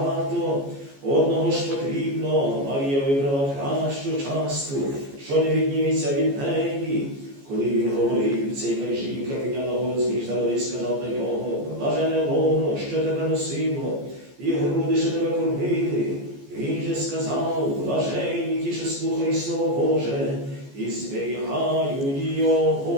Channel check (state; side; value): late; left; 14 ms